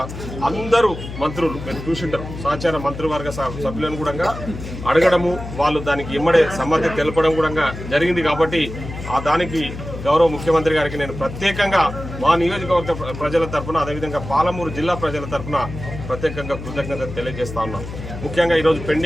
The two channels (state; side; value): noise; left; hum, 10 dB below the sound